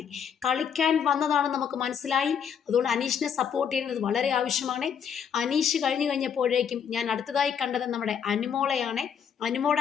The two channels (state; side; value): quieter; right; 7.7 dB